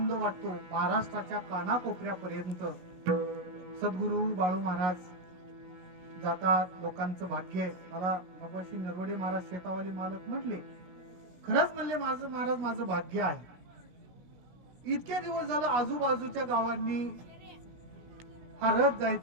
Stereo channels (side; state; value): left; late; 16 ms